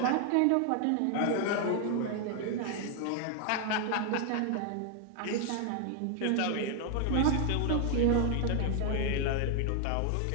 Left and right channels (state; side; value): different; both; correlation 0.00